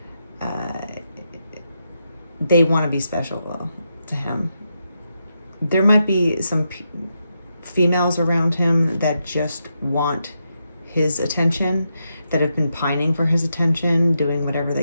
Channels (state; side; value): inverted; both; correlation -0.84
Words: They want to be special, though, to him. There might be some females around him that just want his attention. that have been pining for his attention, doing whatever